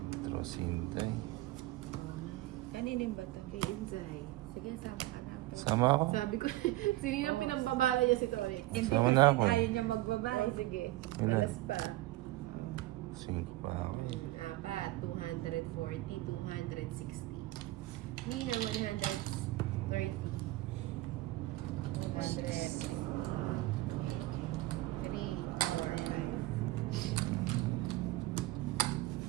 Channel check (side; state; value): left; quieter; 18.0 dB